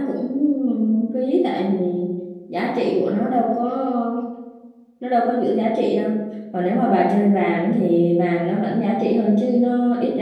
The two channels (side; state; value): both; identical; correlation 1.00